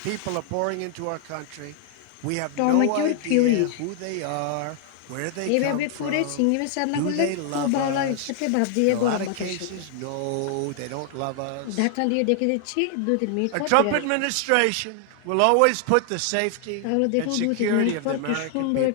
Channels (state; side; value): different; both; correlation 0.00